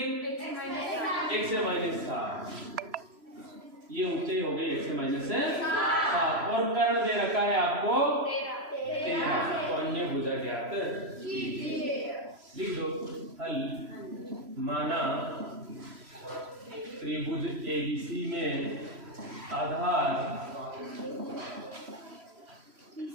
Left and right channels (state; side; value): late; left; 3.0 ms